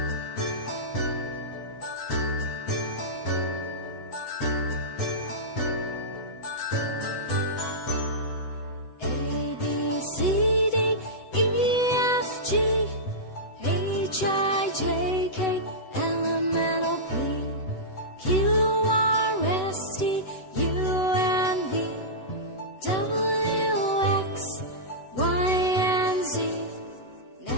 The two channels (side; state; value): right; late; 7.9 ms